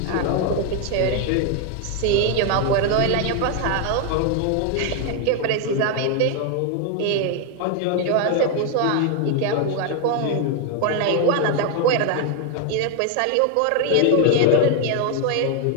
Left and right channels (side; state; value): both; different; correlation 0.00